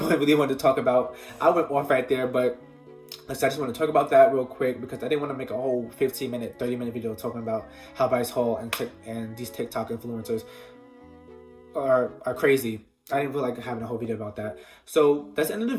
really wanted to talk about. I went off right there, but I just want to talk about that real quick because I didn't want to make a whole 15-minute, 30-minute video talking about how Bryce Hall and these TikTok influencers are crazy. I didn't feel like having a whole video about that. So that's the end of the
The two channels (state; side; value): identical; both; correlation 1.00